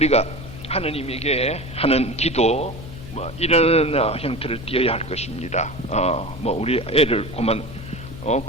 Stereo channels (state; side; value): noise; left; hum, 13 dB below the sound